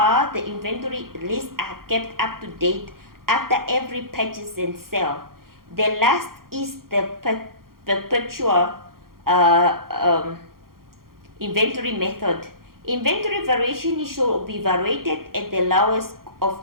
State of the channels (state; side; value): late; left; 0.92 ms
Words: the inventory lists are kept up to date after every purchase and sale. The last is the perpetual inventory method. Inventory variation should be evaluated at the lowest